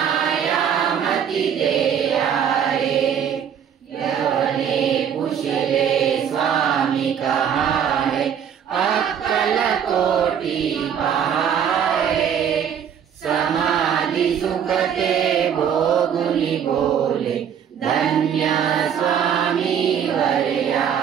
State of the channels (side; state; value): left; quieter; 8.3 dB